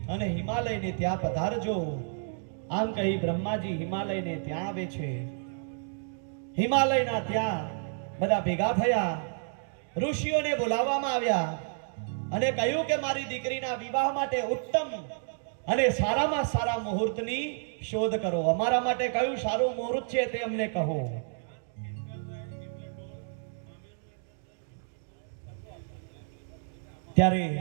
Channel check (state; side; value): silent; left; digital silence